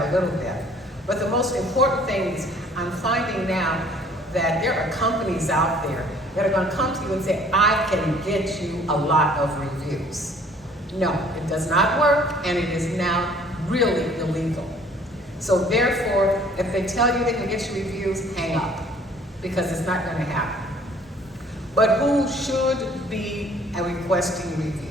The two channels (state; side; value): normal; both; correlation 0.55